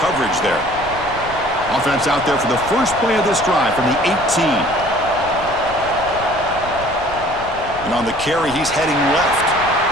coverage there. Offense out there for the first play of this drive from the 18. And on the carry, he's heading left.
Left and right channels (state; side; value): noise; left; rumble, 15 dB below the sound